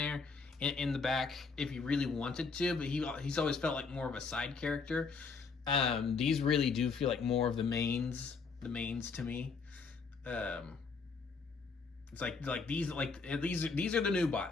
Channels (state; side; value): quieter; right; 4.8 dB